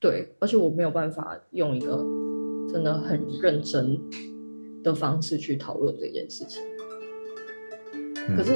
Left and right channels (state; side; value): inverted; both; correlation -1.00